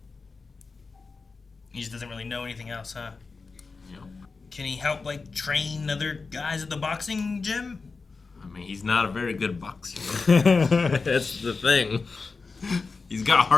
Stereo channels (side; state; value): right; quieter; 4.4 dB